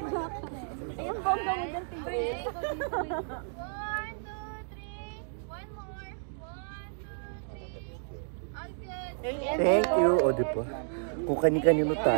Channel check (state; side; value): silent; left; digital silence